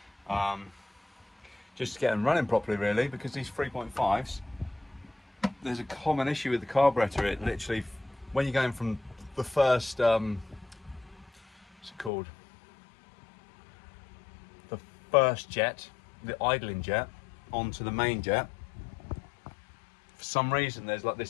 Just to get them running properly, really, because these 3.5s, there's a common issue with the carburetor. It literally, when you're going from the first, what's it called? The first jet, the idling jet, onto the main jet. For some reason, there's like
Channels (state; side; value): drops out; right; at 12.1 s